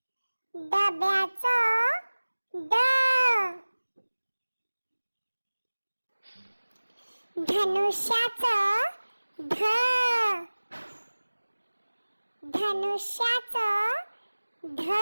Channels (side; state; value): both; inverted; correlation -1.00